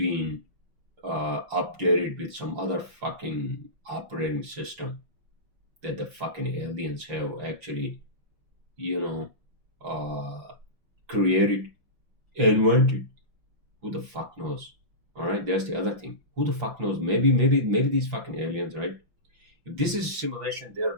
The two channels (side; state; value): left; late; 5.9 ms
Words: updated with some other fucking operating system that the fucking aliens have actually, you know, uh, created, invented. Who the fuck knows? All right, that's the other thing. Who the fuck knows? Maybe these fucking aliens, right? If this is simulation, they're